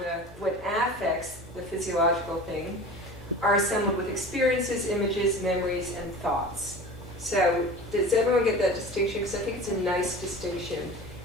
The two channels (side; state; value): both; normal; correlation 0.37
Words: when affects, the physiological thing, are assembled with experiences, images, memories, and thoughts. So does everyone get that distinction? Because I think it's a nice distinction.